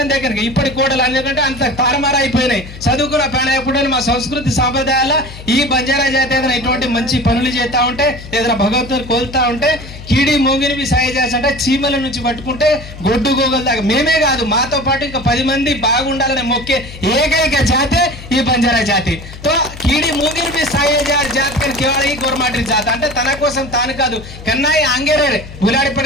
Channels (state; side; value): noise; left; hum, 15 dB below the sound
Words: देखन ఇప్పటి కోడలు ఎందుకంటే అంత తారమారా అయిపోయినాయి చదువుకున్న పైన ఎప్పుడు మా సంస్కృతి సాంప్రదాయాల ఈ బంజారా జాతి ఏదైనా ఇటువంటి మంచి పనులు చేస్తా ఉంటే ఏదైనా భగవంతుని కోల్తా ఉంటే కీడి మోగిని సాయం చేస్తుంటే చీమల నుంచి పట్టుకుంటే గొడ్డు గోగల దాకా మేమే కాదు మాతో పాటు ఇంకా 10 మంది బాగుండాలని మొక్కే ఏకైక జాతి ఈ బంజారా జాతి తో కీడి మోగిని भी సాయ జాతి కని కేవలం ఈ గోర్మాటి జాతి అంటే తన కోసం తాను కాదు కన్నాయి ఆంగేరే గులాడి